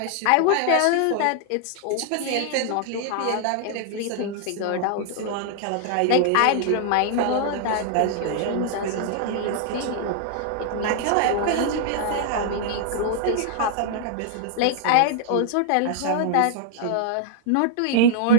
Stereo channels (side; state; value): both; different; correlation 0.00